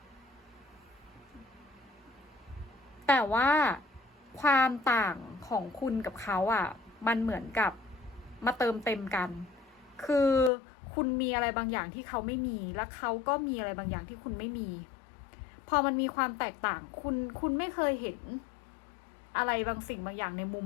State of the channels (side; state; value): right; drops out; at 10.5 s